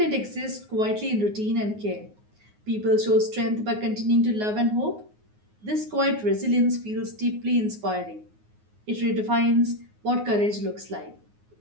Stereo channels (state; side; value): late; left; 9.5 ms